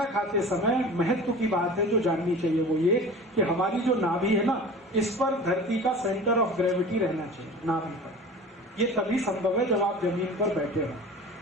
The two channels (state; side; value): normal; both; correlation 0.38